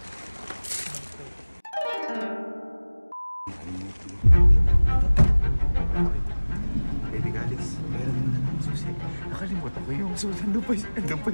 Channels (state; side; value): inverted; both; correlation -1.00